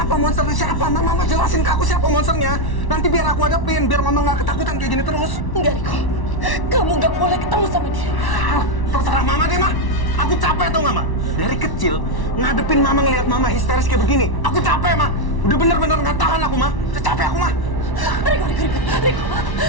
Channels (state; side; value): late; right; 1.1 ms